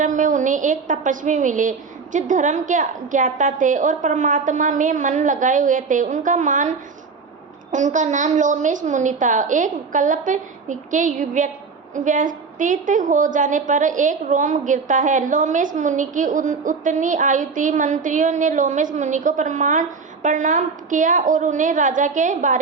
में उन्हें एक तपस्वी मिले जो धर्म के ज्ञाता थे और परमात्मा में मन लगाए हुए थे। उनका नाम लोमेश मुनि था। एक कल्प के व्यतीत हो जाने पर एक रोम गिरता है। लोमेश मुनि की उतनी आयु थी। मंत्रियों ने लोमेश मुनि को प्रणाम किया और उन्हें राजा के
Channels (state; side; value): quieter; left; 4.9 dB